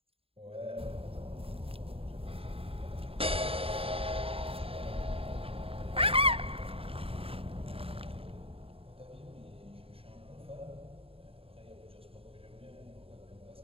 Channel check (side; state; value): left; late; 0.27 ms